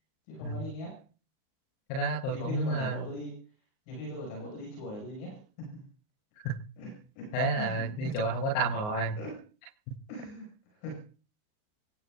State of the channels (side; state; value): right; late; 38 ms